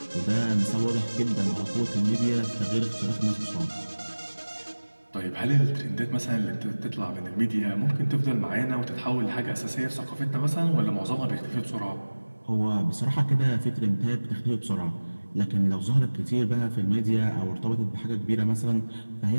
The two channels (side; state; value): both; inverted; correlation -1.00